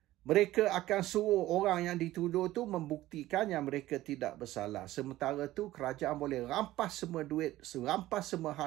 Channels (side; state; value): left; quieter; 15.8 dB